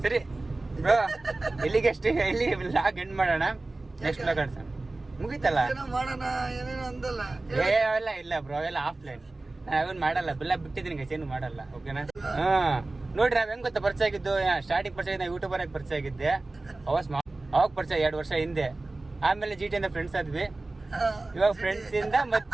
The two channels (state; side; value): quieter; left; 3.1 dB